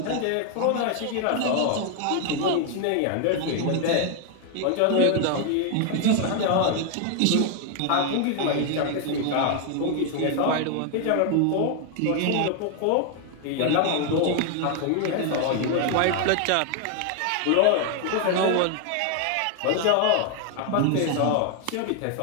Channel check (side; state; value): both; different; correlation 0.00